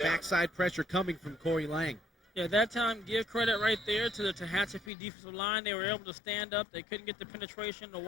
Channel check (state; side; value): drops out; right; at 4.9 s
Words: pressure coming from Cory Lange. Yeah, that time, give credit right there to the Tehachapi defensive line. They were able to stand up. They couldn't get the penetration. The